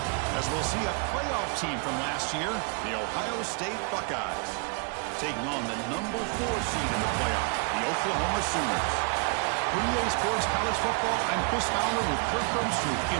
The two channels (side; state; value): left; quieter; 37.1 dB